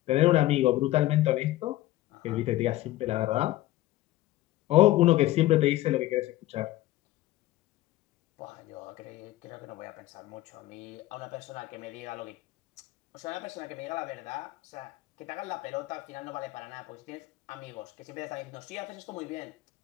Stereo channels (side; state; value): right; quieter; 16.1 dB